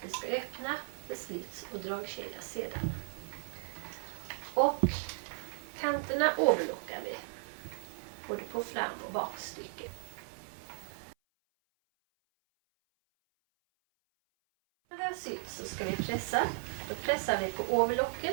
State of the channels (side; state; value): left; silent; 54 dB below the other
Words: vi ska öppna för slits och dragkedja sedan. Och kanterna overlockar vi. både på fram- och bakstycket. När det har sytt så ska vi pressa. Då pressar vi på